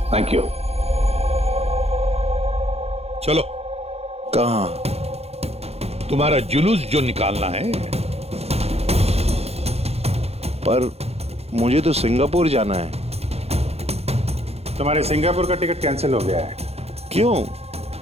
थैंक यू। चलो, कहाँ? तुम्हारा जुलूस जो निकालना है। पर मुझे तो सिंगापुर जाना है। तुम्हारे सिंगापुर का टिकट कैंसिल हो गया है। क्यों?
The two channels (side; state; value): left; late; 0.30 ms